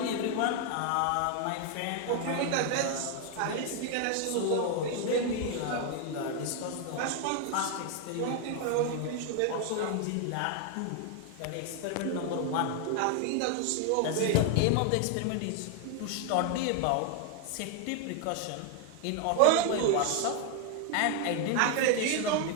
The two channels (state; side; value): different; both; correlation 0.00